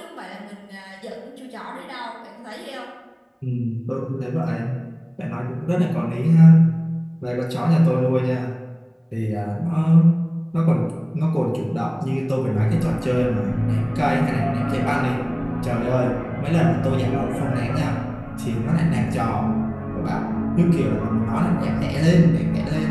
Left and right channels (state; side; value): identical; both; correlation 1.00